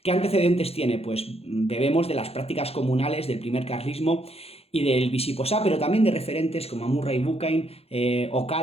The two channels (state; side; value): late; right; 0.29 ms